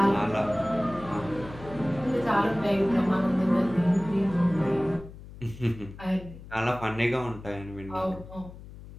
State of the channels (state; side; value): noise; left; hum, 16 dB below the sound